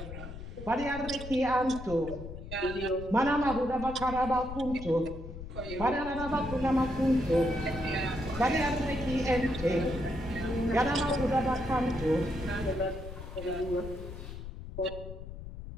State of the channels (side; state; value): left; noise; rumble, 10 dB below the sound